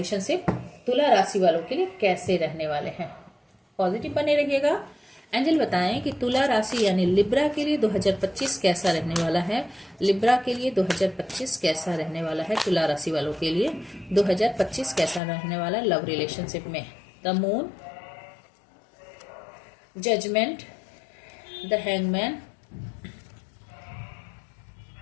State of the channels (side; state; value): right; drops out; at 15.2 s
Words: तुला राशि वालों के लिए कैसे रहने वाले हैं। पॉजिटिव बने रहिएगा। एंजल बताएं कि तुला राशि यानी लिब्रा के लिए 2025 कैसा रहने वाला है। लिब्रा के लिए 2025 कैसा रहने वाला है। तुला राशि वालों के लिए 2025 कैसा रहने वाला है लव रिलेशनशिप में। The moon, judgement, the hangman,